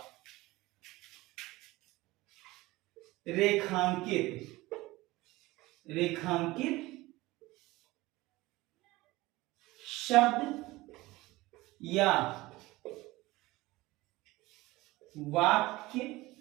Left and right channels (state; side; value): quieter; left; 19.8 dB